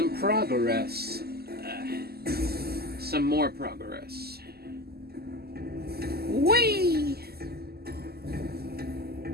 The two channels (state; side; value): late; left; 0.46 ms